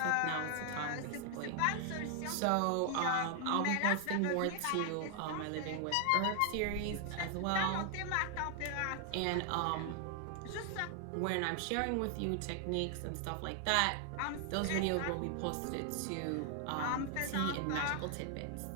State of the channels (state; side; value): different; both; correlation 0.00